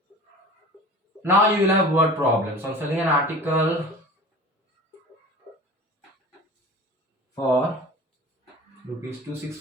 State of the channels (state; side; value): normal; both; correlation 0.39